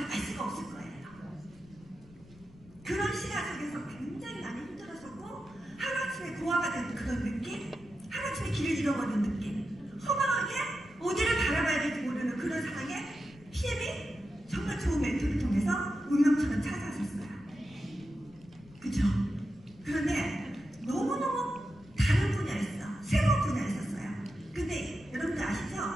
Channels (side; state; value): left; noise; rumble, 23 dB below the sound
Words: 알 수가 없을 거예요. 그런 시간 속에서 굉장히 많이 힘들었었고 하루아침에 고아가 된 그런 느낌, 하루아침에 길을 잃어버린 느낌, 허망하게 어디를 바라봐야 될지 모르는 그런 상황에 PM이 정말 좋은 멘토를 통해서 운명처럼 찾아왔었어요. 그쵸? 그런데 너무너무 다른 분야였어. 새로운 분야였었어요. 근데 여러분들 아시죠?